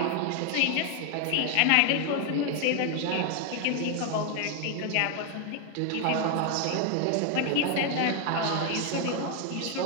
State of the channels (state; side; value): different; both; correlation 0.01